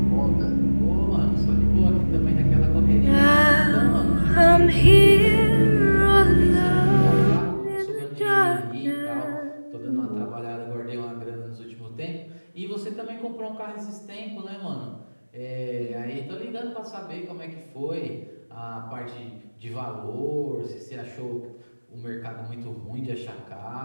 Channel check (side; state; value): both; inverted; correlation -1.00